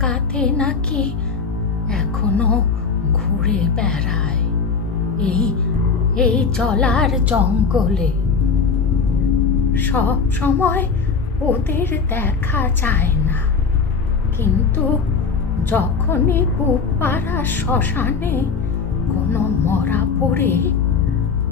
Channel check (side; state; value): right; quieter; 5.3 dB